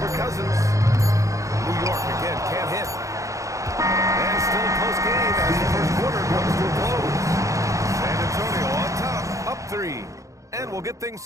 Cousins. New York again can't hit. And still a close game as the first quarter comes to a close. San Antonio on top, up 3. And we'll get things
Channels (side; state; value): left; late; 0.15 ms